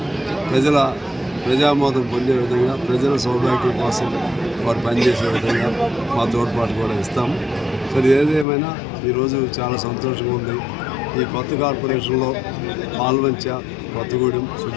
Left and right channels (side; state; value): right; drops out; at 8.5 s